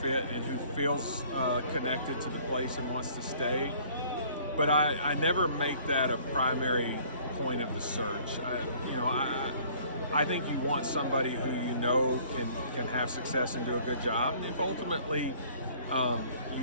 and who feels connected to the place and wants to stay. But I never make that a primary point of the search. I think you want somebody who can have success and do a good job. And if ultimately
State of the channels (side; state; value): both; inverted; correlation -0.55